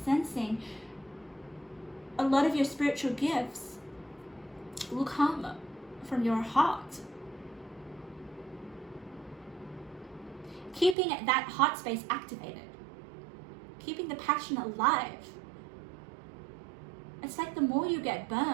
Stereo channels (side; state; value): left; drops out; at 11.0 s